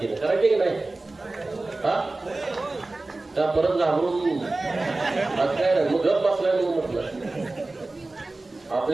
करायचे की नाही? हा का परत घाबरून आज काय नाही मग गप बसलाय म्हणून म्हटलं.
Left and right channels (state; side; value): quieter; left; 3.1 dB